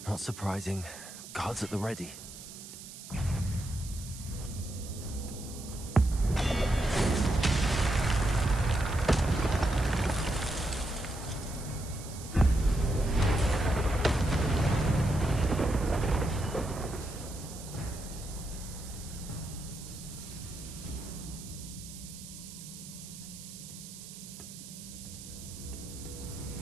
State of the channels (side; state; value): right; noise; hiss, 14 dB below the sound